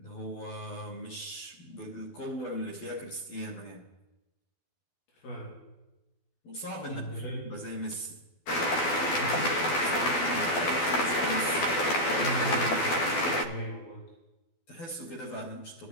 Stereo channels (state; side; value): late; right; 12 ms